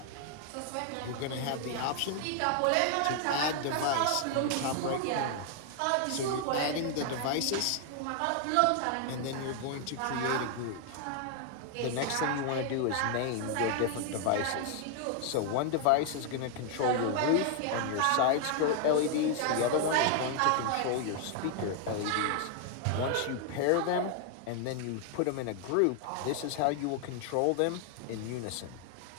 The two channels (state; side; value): different; both; correlation 0.00